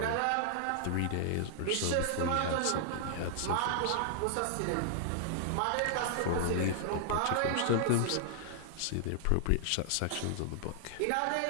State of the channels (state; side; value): different; both; correlation -0.01